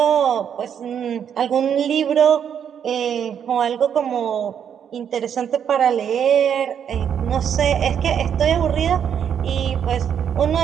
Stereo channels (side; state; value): left; quieter; 8.4 dB